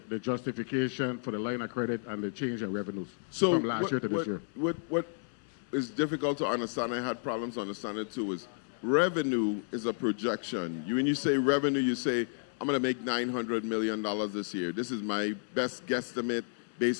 justification for the line of credit and the change in revenues So from last year to this year. What is difficult to understand, I had problems understanding it too, is revenue is a projection. When you say revenue, you say, I'm going to make $900 million this year. This is my best guesstimate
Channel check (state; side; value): silent; right; digital silence